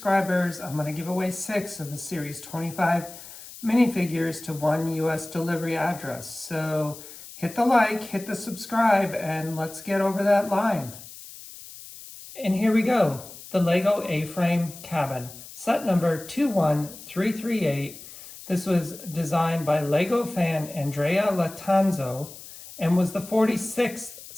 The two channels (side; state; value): left; noise; hiss, 16 dB below the sound